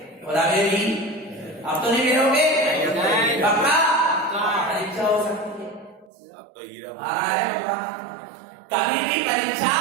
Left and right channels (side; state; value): left; drops out; at 6.1 s